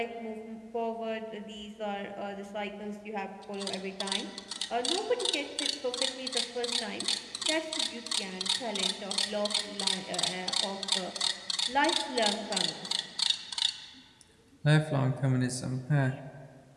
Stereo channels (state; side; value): identical; both; correlation 1.00